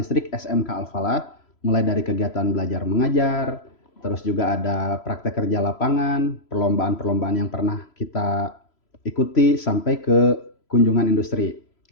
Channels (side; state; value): right; late; 3.0 ms